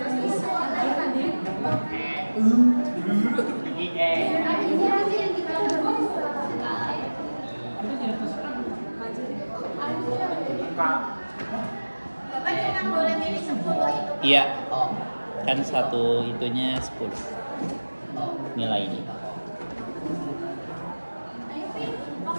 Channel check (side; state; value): both; inverted; correlation -1.00